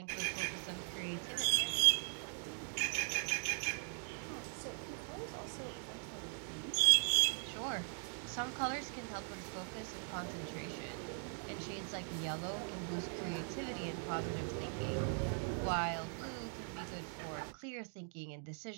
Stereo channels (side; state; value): left; silent; 51 dB below the other